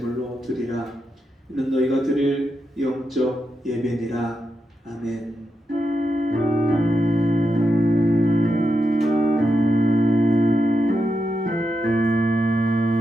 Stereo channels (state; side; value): normal; both; correlation 0.86